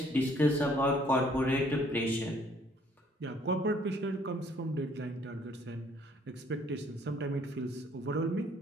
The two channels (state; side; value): normal; both; correlation 0.61